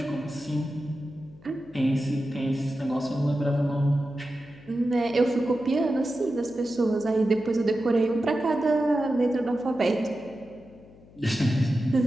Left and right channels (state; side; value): noise; left; hum, 24 dB below the sound